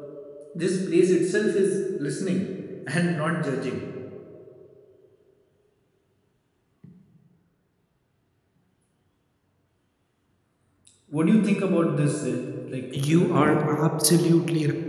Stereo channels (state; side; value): identical; both; correlation 1.00